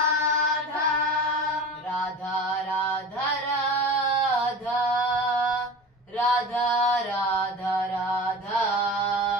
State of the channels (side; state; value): both; normal; correlation 0.34